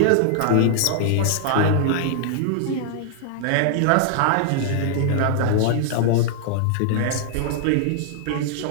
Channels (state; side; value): different; both; correlation -0.01